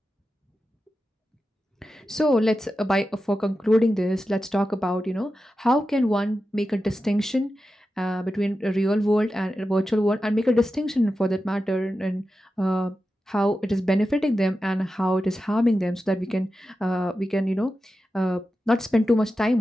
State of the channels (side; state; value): both; normal; correlation 0.92